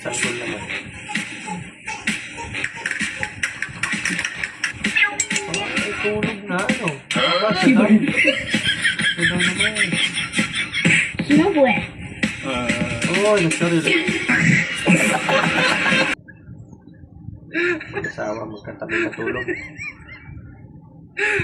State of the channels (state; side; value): identical; both; correlation 1.00